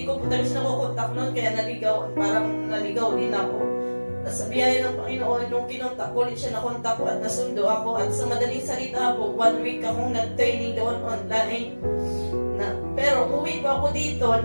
ko po talaga siya nakukontak noon kaya parang naligaw din ako. At sa biyaya ng Panginoon, nung kinontak ko ulit siya, nakontak ko at nasundo ako. At sa madaling salita po, 1 week akong nag-training doon online. Pero uwi pa ako dito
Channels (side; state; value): both; inverted; correlation -1.00